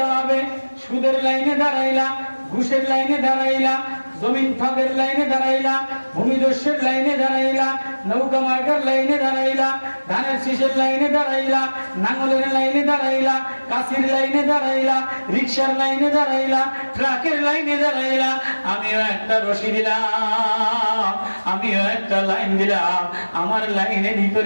হবে। সুদের লাইনে দাঁড়াইলা, ঘুষের লাইনে দাঁড়াইলা, জমিন ফাঁকের লাইনে দাঁড়াইলা, ভূমিদস্যের লাইনে দাঁড়াইলা, নৌকা মার্কার লাইনে দাঁড়াইলা, ধানের শীষের লাইনে দাঁড়াইলা, নাঙ্গলের লাইনে দাঁড়াইলা, কাশির লাইনে দাঁড়াইলা, রিক্সার লাইনে দাঁড়াইলা, ট্রাকের লাইনে দাঁড়াইলা। আমিও একটা রশি দিলাম, আমিও একটা লাইন দিলাম, আমার লাইনের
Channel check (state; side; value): inverted; both; correlation -1.00